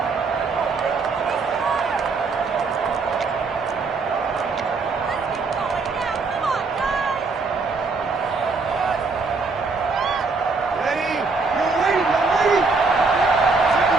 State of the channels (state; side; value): quieter; left; 4.2 dB